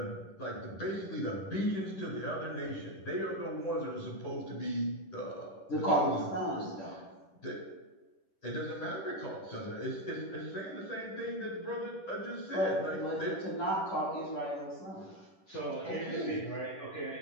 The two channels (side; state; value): right; late; 10 ms